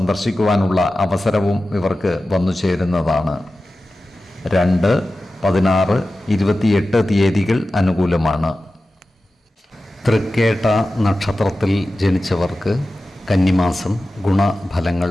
അവസരവും ഇവർക്ക് വന്നു ചേരുന്നതാണ്. 2, 16, 28 തീയതികൾ അനുകൂലമാണ്. തൃക്കേട്ട നക്ഷത്രത്തിൽ ജനിച്ചവർക്ക് കന്നിമാസം ഗുണഫലങ്ങൾ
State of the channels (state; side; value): normal; both; correlation 0.94